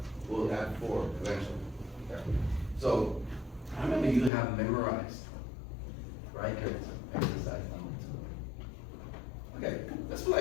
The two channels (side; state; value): right; drops out; at 4.3 s